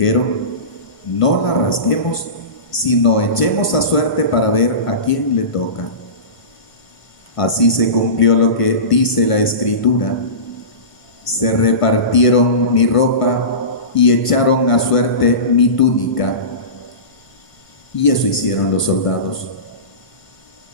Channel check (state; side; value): late; right; 1.5 ms